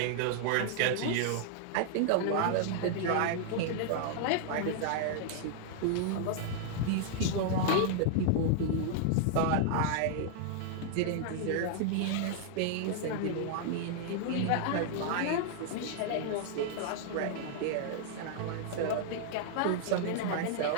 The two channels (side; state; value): both; different; correlation -0.01